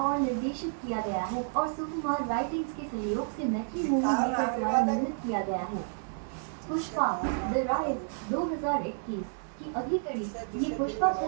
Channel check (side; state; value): left; silent; digital silence